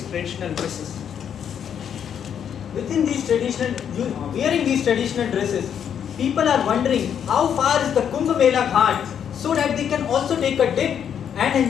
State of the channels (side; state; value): right; quieter; 8.5 dB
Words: traditional dresses. Within these wearing these traditional dresses, people are wondering how far is the Kumbh Mela Ghat so that they can also take a dip and